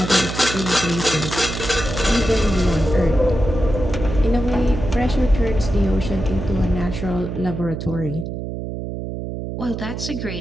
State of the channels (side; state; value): right; noise; hum, 6 dB below the sound